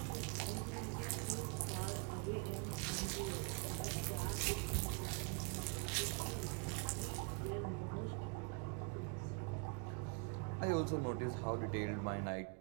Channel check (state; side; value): quieter; left; 34.6 dB